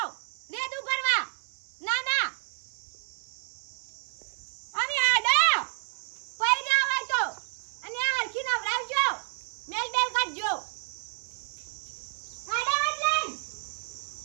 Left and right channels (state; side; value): silent; left; 58 dB below the other